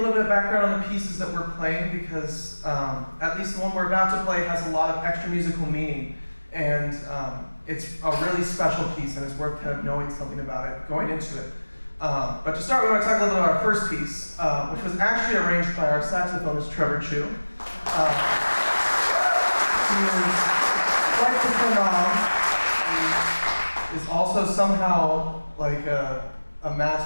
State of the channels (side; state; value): both; inverted; correlation -1.00